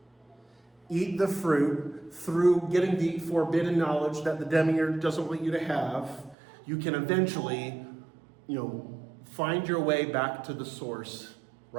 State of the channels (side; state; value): left; drops out; at 6.4 s